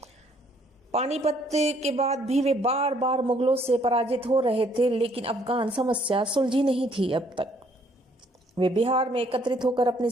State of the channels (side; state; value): both; normal; correlation 0.65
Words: पानीपत के बाद भी वे बार बार मुगलों से पराजित हो रहे थे, लेकिन अफगान समस्या सुलझी नहीं थी अब तक। वे बिहार में एकत्रित होकर अपनी